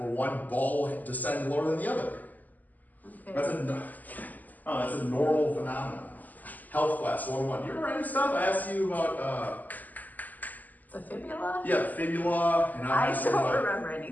one ball descends lower than the other. Okay. That's a normal phenomenon. Health class 101. Do you remember any stuff I asked you about? The fibula? Yeah, fibula. And I don't remember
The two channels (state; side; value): late; right; 0.082 ms